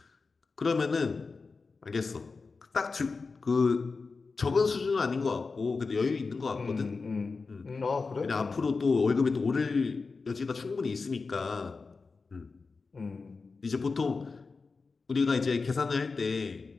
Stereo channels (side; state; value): right; quieter; 4.3 dB